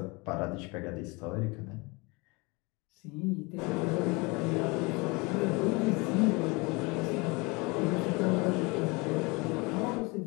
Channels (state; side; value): quieter; right; 26.9 dB